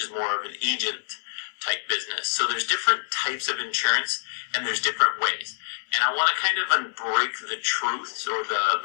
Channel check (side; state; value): right; silent; 59 dB below the other